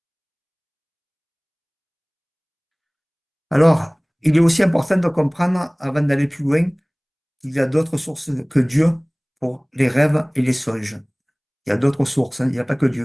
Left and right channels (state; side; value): identical; both; correlation 1.00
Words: Alors, il est aussi important de comprendre, avant d'aller plus loin, qu'il y a d'autres sources que Dieu pour les rêves et les songes. Il y a d'autres sources, hein, il n'y a pas que Dieu